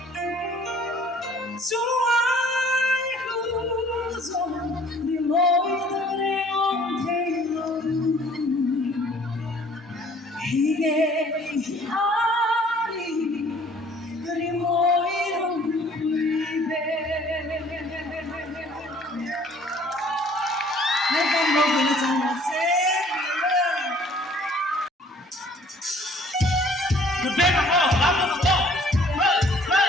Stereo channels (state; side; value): normal; both; correlation 0.56